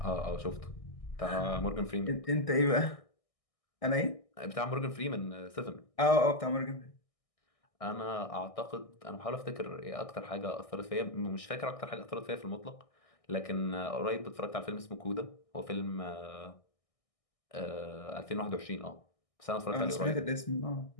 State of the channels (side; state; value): right; late; 1.6 ms